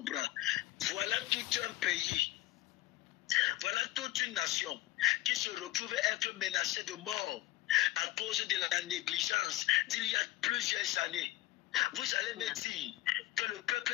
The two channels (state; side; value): quieter; right; 17.0 dB